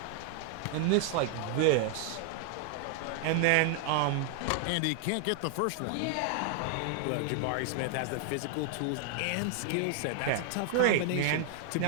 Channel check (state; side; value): different; both; correlation 0.00